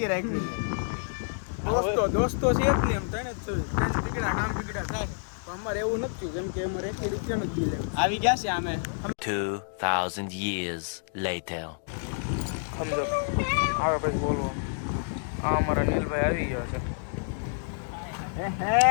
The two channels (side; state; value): right; silent; digital silence